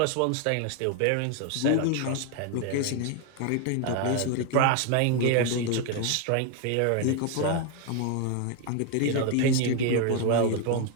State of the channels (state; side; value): different; both; correlation 0.01